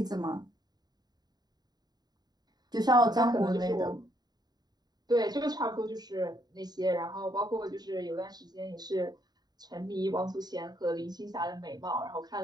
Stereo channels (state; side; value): late; left; 0.20 ms